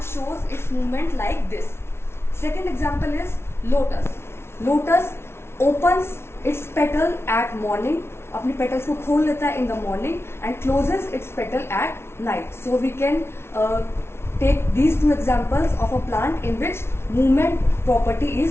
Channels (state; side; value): late; right; 0.12 ms